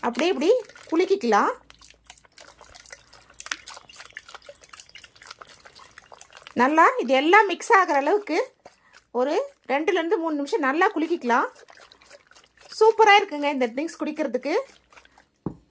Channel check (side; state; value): both; identical; correlation 1.00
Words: அப்படியே இப்படி குலுக்கிக்கலாம். நல்லா இது எல்லாம் மிக்ஸ் ஆகிற அளவுக்கு ஒரு 2லேருந்து 3 நிமிஷம் நல்லா குலுக்கிக்கலாம். சூப்பராக இருக்குங்க இந்த ட்ரிங்க்ஸ் குடிக்கிறதுக்கு.